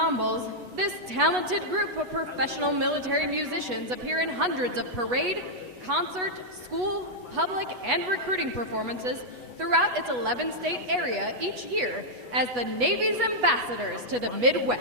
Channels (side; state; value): left; late; 8.2 ms